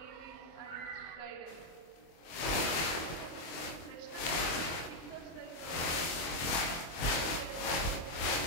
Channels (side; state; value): right; late; 24 ms